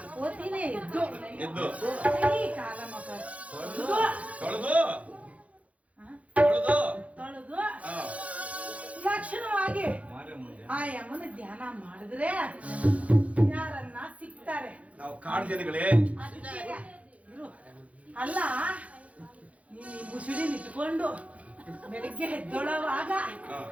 ಓದ್ತೀನಿ ಎದ್ದು ಎದ್ದು ಕೈ ಕಾಲ ಮಕ ತೊಳ್ದು ತೊಳೆದು ಹಾ? ತೊಳೆದು ತೊಳೆದು ಹಾ. ಲಕ್ಷಣವಾಗಿ ಆ ಯಮನ ಧ್ಯಾನ ಮಾಡಿದ್ರೆ ಯಾರನ್ನ ಸಿಗ್ತಾರೆ. ನಾವು ಕಾಡು ಜನಗಳೇ ಅದಕ್ಕೆ ಇರು. ಅಲ್ಲ ನೀನು ಈ ಮುಸುಡಿ ನಿಂತ್ಕೊಂಡು ಬೆಳಿಗ್ಗೆ ಎದ್ದೊಳವಾಗ ಹಾ.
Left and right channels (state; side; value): late; left; 0.066 ms